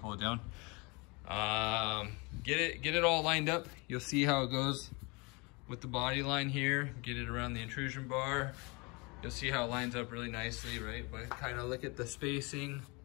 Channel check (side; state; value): right; quieter; 28.2 dB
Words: it down. Get it all lined up. You'll see how it goes with the body line here. Get it around the intrusion bar. You'll see how it lines up really nicely, right? But kind of look at the spacing